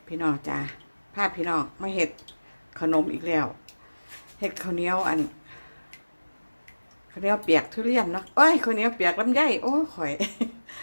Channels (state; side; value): inverted; both; correlation -1.00